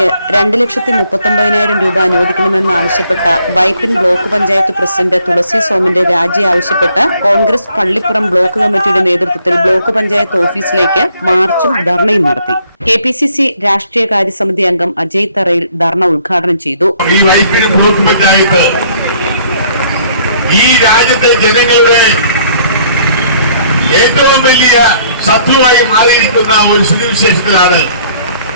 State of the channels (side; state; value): both; inverted; correlation -0.62